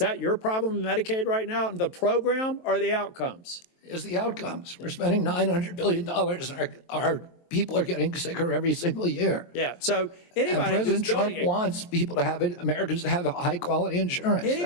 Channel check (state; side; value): late; right; 23 ms